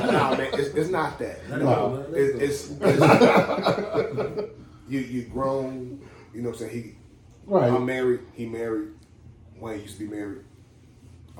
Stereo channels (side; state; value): both; identical; correlation 1.00